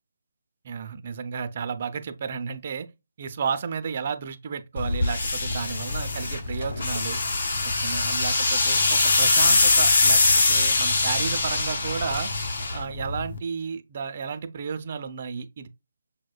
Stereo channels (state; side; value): inverted; both; correlation -0.82